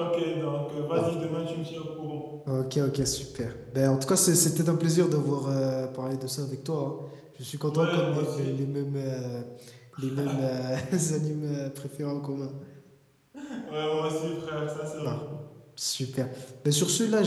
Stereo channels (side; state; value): both; identical; correlation 1.00